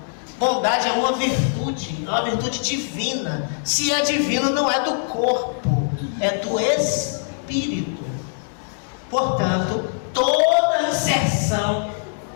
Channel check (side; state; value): right; silent; digital silence